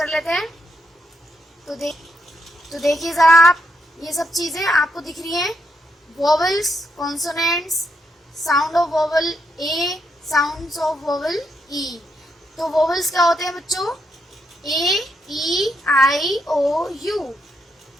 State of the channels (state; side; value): normal; both; correlation 0.79